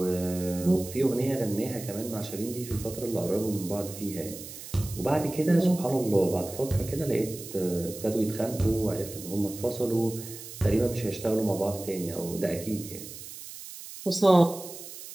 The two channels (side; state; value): right; noise; hiss, 13 dB below the sound